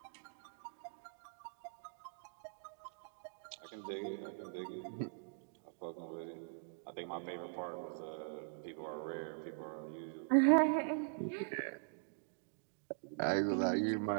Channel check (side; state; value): left; silent; digital silence